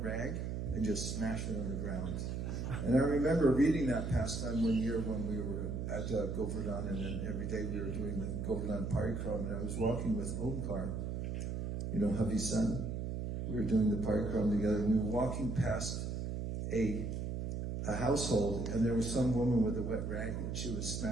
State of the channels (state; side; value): noise; right; hum, 3 dB below the sound